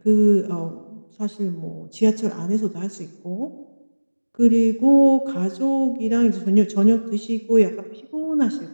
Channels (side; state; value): both; inverted; correlation -1.00